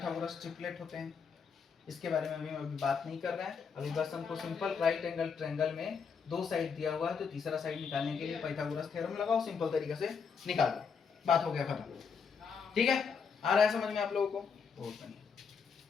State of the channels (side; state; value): right; quieter; 5.9 dB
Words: ट्रिपलेट होते हैं। इसके बारे में अभी बात नहीं कर रहे हैं। अभी बस हमको सिंपल राइट एंगल ट्रायंगल में 2 साइड दिया हुआ है तो तीसरा साइड निकालने के लिए पाइथागोरस थ्योरम लगाओ, सिंपल तरीके से निकाल दो, बात हो गया खत्म। ठीक है, आ रहा है समझ में आप लोगों को? बहुत बढ़िया।